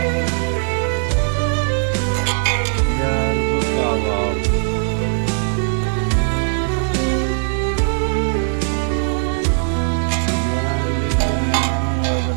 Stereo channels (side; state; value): left; silent; digital silence